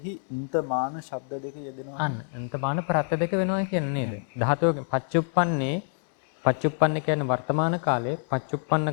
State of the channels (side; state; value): right; silent; digital silence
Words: ඉන්තමාන ශබ්ද දෙක අන්න අන්තමාන ප්‍රත්‍ය දෙක වෙනවා කියන්නේ නේද? ධාතුවකින් පච්චුප්පන්නේ කියන්නේ වර්තමාන කාලයේ පච්චුප්පන්න